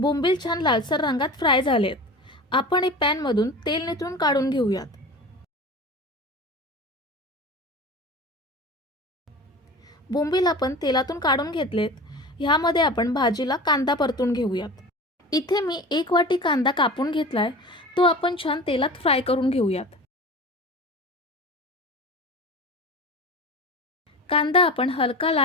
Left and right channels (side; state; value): both; normal; correlation 0.35